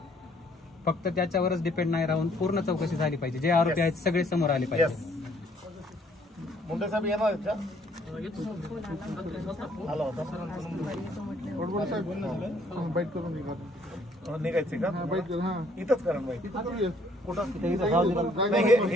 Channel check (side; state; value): both; normal; correlation 0.63